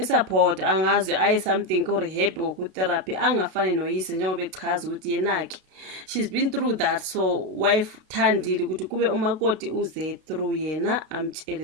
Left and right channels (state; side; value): late; left; 32 ms